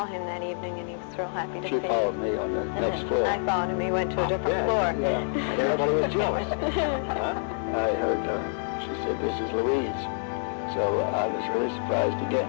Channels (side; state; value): right; silent; digital silence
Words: him that evening, and he was real happy to see me. She followed me on the next floor. I followed him. He went to a different floor. Yeah. And everybody was jealous. I heard her. She said, "This is Louise." So I was really surprised